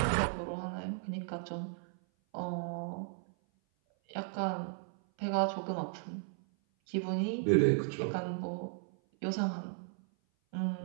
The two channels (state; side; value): silent; left; 54 dB below the other